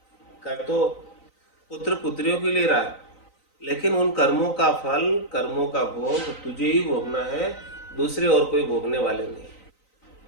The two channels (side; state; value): right; late; 3.9 ms